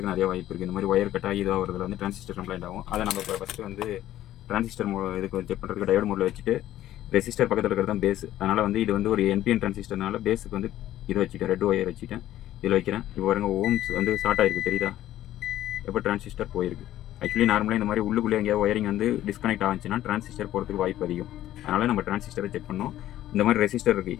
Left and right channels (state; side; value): quieter; right; 13.3 dB